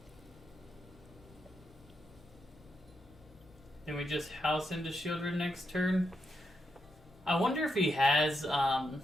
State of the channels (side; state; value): both; normal; correlation 0.83